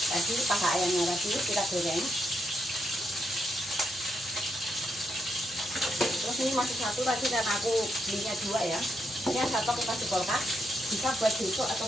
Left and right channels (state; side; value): normal; both; correlation 0.80